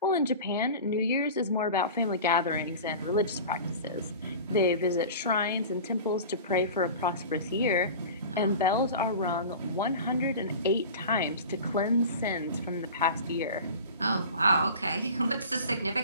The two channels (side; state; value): both; inverted; correlation -0.36